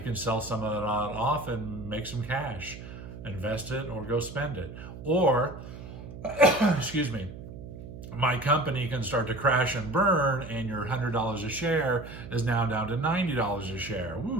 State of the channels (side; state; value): right; noise; hum, 12 dB below the sound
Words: can sell some of that off and make some cash, invest it or go spend it. Or, excuse me, my company can start to crash and burn and your $100 a share is now down to $90 a share.